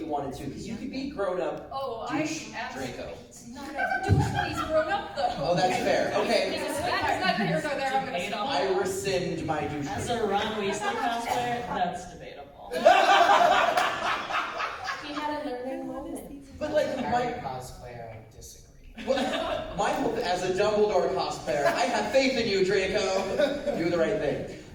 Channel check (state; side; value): identical; both; correlation 1.00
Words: wanted to, because you could be grown up douche Draco. It's not a douche when he's grown up though. Oh, that's fair. Okay. That's not here nor there, I'm gonna stop. I rescind my douche. As a Ron Weasley cosplayer, that's debatable. He had a learning moment. But As a Harry cosplayer, I disagree. my hope as a Dumbledore cosplayer, I have faith in you, Draco. Do the right thing.